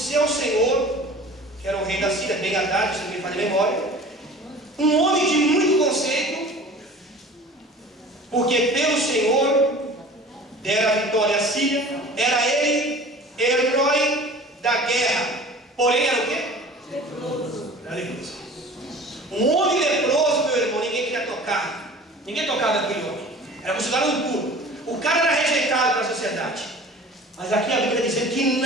senhor, que era o rei da Síria, Ben-Hadad, se não me falha a memória. Um homem de muito conceito, porque pelo Senhor dera a vitória à Síria. Era ele herói da guerra, porém era o quê? Leproso. Era leproso. Um homem leproso, meu irmão, ninguém queria tocar. Ninguém tocava aquele homem. Era considerado impuro. O cara era rejeitado para a sociedade. Mas aqui a Bíblia está dizendo que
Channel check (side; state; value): both; normal; correlation 0.43